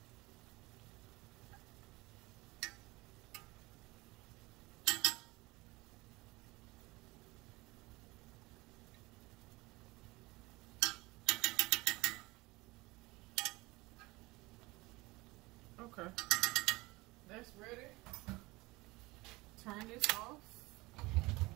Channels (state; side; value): quieter; left; 22.1 dB